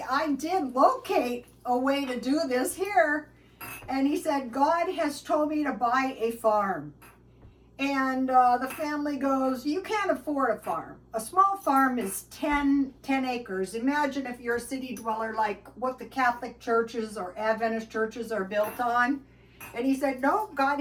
I did locate a way to do this here. And he said, God has told me to buy a farm. And the family goes, you can't afford a farm. A small farm is 10 acres. Imagine if you're a city dweller, like what the Catholic churches or Adventist churches are built on. And he said, no, God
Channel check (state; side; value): identical; both; correlation 1.00